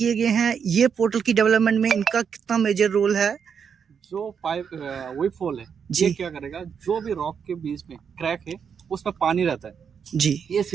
गए हैं ये पोर्टल की डेवलपमेंट में इनका कितना मेजर रोल है? जो पाइप वीप होल है जी। ये क्या करेगा, जो भी रॉक के बीच में क्रैक है उसमें पानी रहता है जी ये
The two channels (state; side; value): quieter; left; 7.0 dB